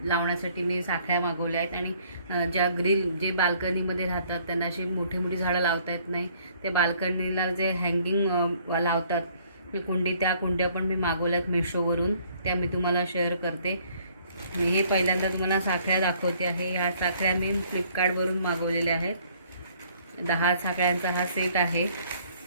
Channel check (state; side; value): inverted; both; correlation -0.61